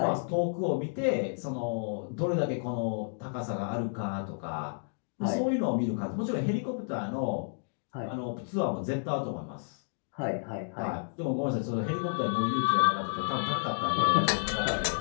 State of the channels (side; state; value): right; silent; digital silence